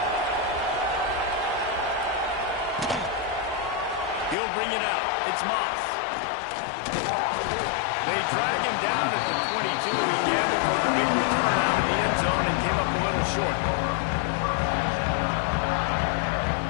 He'll bring it out. It's Moss. They drag him down at the 22. He gambled for the big return out of the end zone and came up a little short.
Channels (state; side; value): drops out; right; at 4.4 s